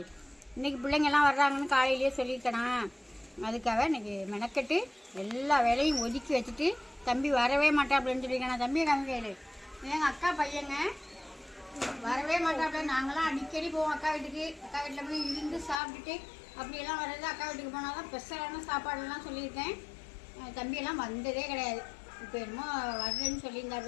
இன்றைக்கி பிள்ளைங்கள்லாம் வர்றாங்கன்னு காலையிலேயே சொல்லியிருக்கேனா, அதுக்காக இன்றைக்கி மெனக்கட்டு எல்லா வேலையும் ஒதுக்கி வச்சுட்டு தம்பி வரவே மாட்டேன் அப்படின்னு சொல்லியிருக்கேன். நான் தம்பியை காமிக்கையில் எங்கள் அக்கா பையங்க வரவே மாட்டாப்புல. நாங்களாம் அடிக்கடி போவோம் அக்கா வீட்டுக்கு. அக்கா வீட்டில் போய் இருந்து சாப்பிட்டுட்டு அப்படியெல்லாம் வர்றது. அக்கா வீட்டுக்கு போனால் தான் ஸ்பெஷலான சாப்பாடுலாம் சொல்லியிருக்கேன். தம்பியெல்லாம் வந்ததே கிடையாது. இப்போ என்னமோ வர்றேன்னு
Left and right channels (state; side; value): drops out; right; at 15.8 s